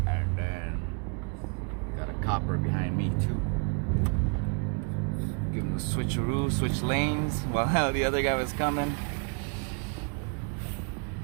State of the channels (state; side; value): quieter; left; 36.7 dB